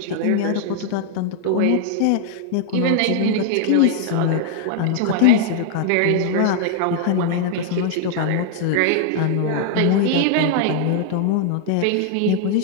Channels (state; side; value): different; both; correlation 0.00